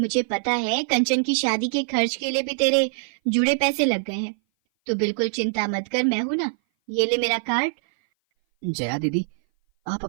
पता है कंचन की शादी के खर्च के लिए भी तेरे जुड़े पैसे लग गए हैं, तो बिल्कुल चिंता मत कर, मैं हूं ना, ये ले मेरा कार्ड। जया दीदी, आप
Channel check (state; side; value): silent; left; 58 dB below the other